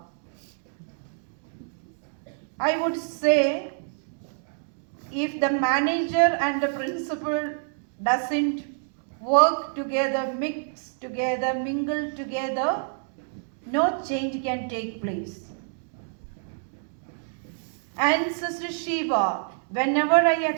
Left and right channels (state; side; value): silent; left; digital silence